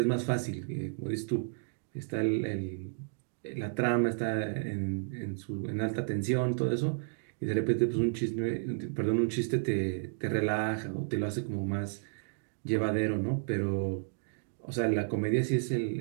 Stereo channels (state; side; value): silent; left; digital silence